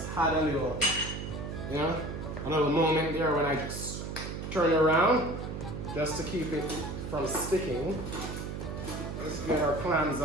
had a little, you know, a little moment there when I just turn it around, just to keep it from sticking. Let's get our clams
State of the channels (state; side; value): noise; right; hum, 6 dB below the sound